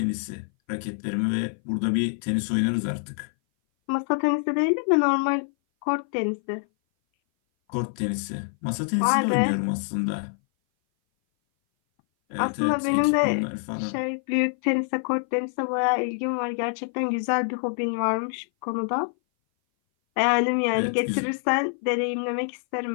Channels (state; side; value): silent; right; 58 dB below the other